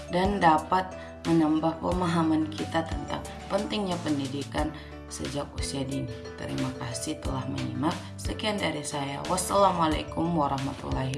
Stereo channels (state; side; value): identical; both; correlation 1.00